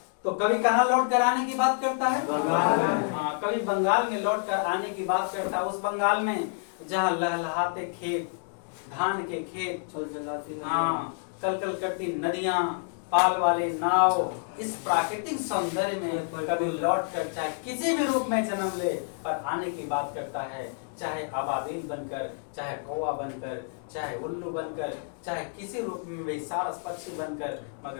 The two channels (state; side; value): silent; right; 59 dB below the other